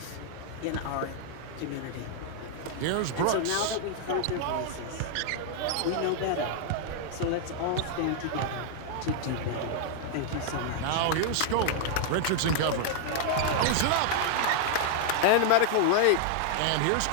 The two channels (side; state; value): both; different; correlation 0.00